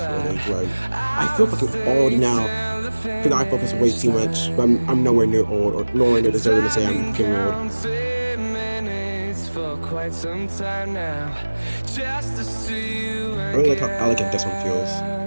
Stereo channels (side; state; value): both; inverted; correlation -1.00